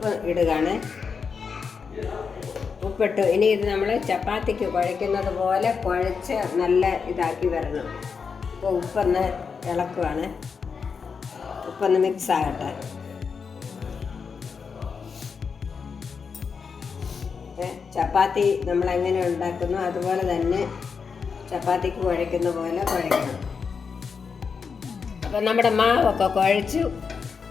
ഇടുകയാണ്. ഉപ്പിട്ടു. ഇനി ഇത് നമ്മൾ ചപ്പാത്തിക്ക് കുഴയ്ക്കുന്നത് പോലെ കുഴച്ച് നല്ല ഇതാക്കി വരണം. അപ്പോൾ ഉപ്പൊന്ന് ഇളക്കുവാണ്. ഉപ്പൊന്ന് മിക്സ് ആകട്ടെ. ചപ്പാത്തി നമ്മൾ എങ്ങനെ ഉണ്ടാക്കുന്നു അതുപോലെ തന്നെ ചപ്പാത്തിക്ക് കുഴയ്ക്കുന്ന പോലെ കുഴയ്ക്കണം. അപ്പം നമ്മുടെ മാവൊക്കെ കുഴച്ചു.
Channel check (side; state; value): right; quieter; 5.7 dB